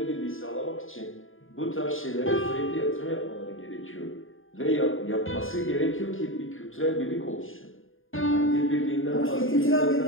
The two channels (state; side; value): late; right; 0.59 ms